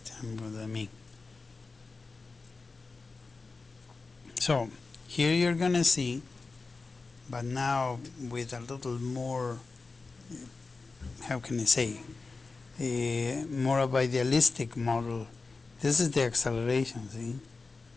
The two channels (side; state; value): right; quieter; 4.0 dB